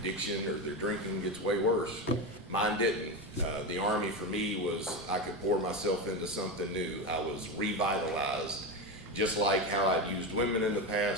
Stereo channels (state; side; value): normal; both; correlation 0.17